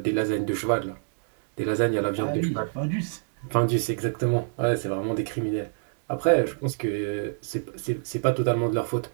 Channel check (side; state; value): left; silent; digital silence